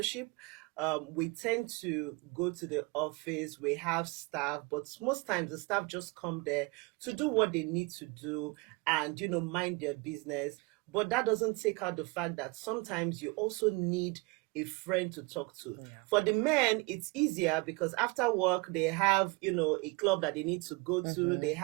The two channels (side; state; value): left; quieter; 27.6 dB